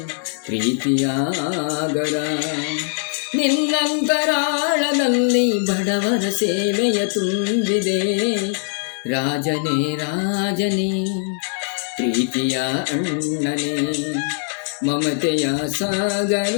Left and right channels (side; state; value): right; silent; digital silence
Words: ಪ್ರೀತಿಯ ಆಗರ, ನಿನ್ನಂತರಾಳದಲ್ಲಿ ಬಡವರ ಸೇವೆಯ ತುಂಬಿದೆ. ರಾಜನೇ ರಾಜನೇ ಪ್ರೀತಿಯ ಅಣ್ಣನೇ, ಮಮತೆಯ ಸಾಗರ